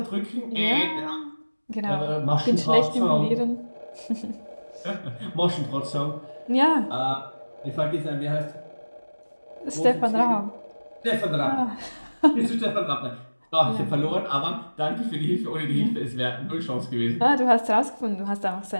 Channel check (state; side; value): inverted; both; correlation -1.00